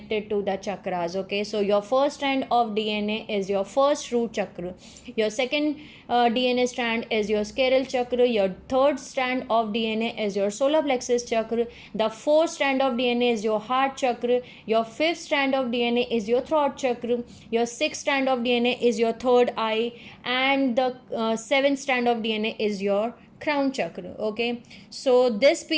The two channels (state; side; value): identical; both; correlation 1.00